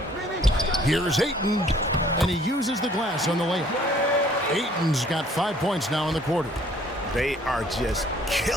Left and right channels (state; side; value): normal; both; correlation 0.58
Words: Here's Ayton, and he uses the glass on the layup. Ayton's got 5 points now in the quarter. They are just